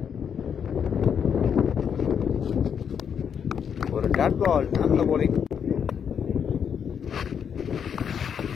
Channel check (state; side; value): quieter; right; 7.6 dB